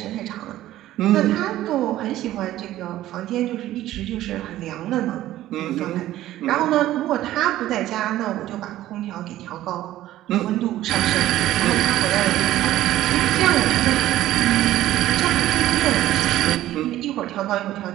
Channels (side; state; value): left; quieter; 14.3 dB